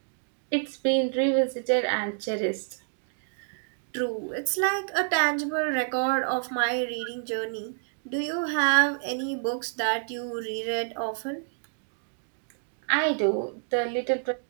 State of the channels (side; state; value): left; silent; digital silence